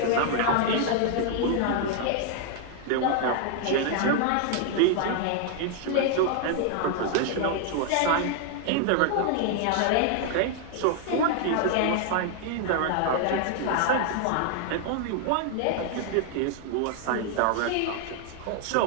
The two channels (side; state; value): both; different; correlation 0.00